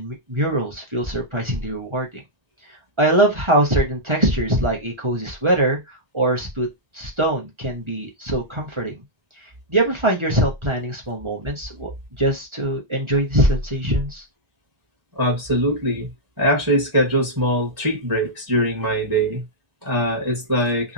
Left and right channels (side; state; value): left; late; 1.4 ms